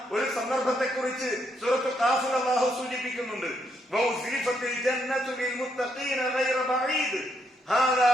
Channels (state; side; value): normal; both; correlation 0.76